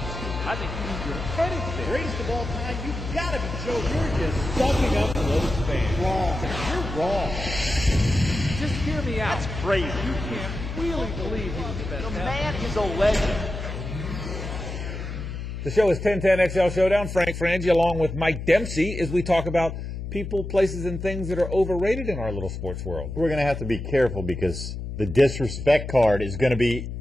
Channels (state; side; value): noise; left; hum, 7 dB below the sound